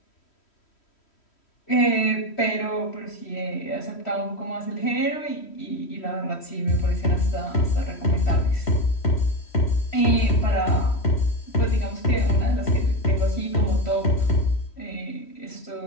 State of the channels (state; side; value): late; right; 3.1 ms